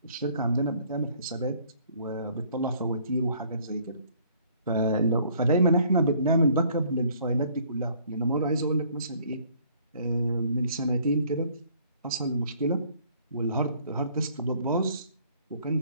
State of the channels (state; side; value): inverted; both; correlation -0.60